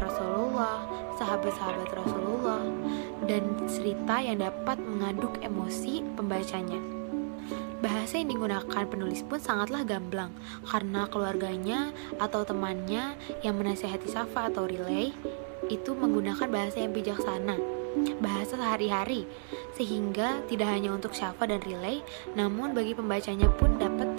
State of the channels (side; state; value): left; silent; digital silence